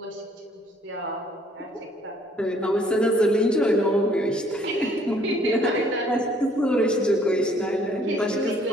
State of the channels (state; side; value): normal; both; correlation 0.62